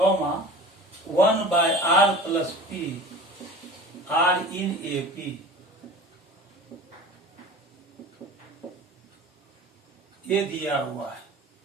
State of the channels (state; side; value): normal; both; correlation 0.39